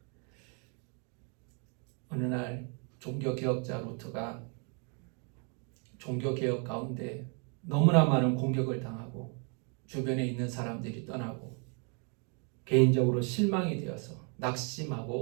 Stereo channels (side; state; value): left; quieter; 37.4 dB